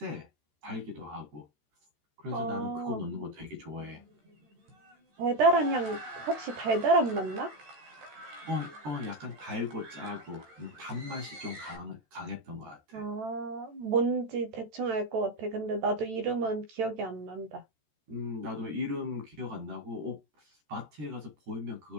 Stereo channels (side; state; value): left; late; 14 ms